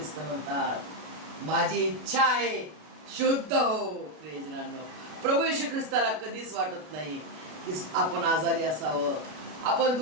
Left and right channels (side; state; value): left; late; 33 ms